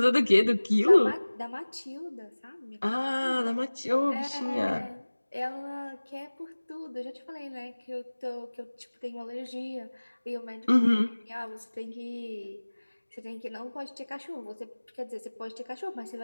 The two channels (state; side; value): inverted; both; correlation -1.00